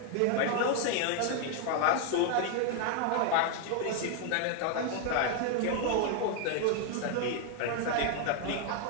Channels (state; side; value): different; both; correlation 0.00